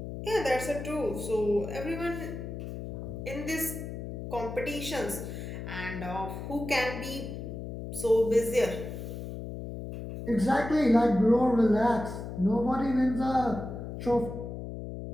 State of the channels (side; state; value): left; noise; hum, 8 dB below the sound